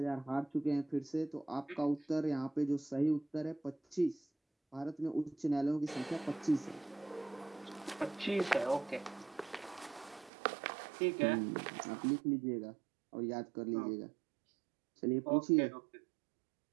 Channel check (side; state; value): left; drops out; at 10.3 s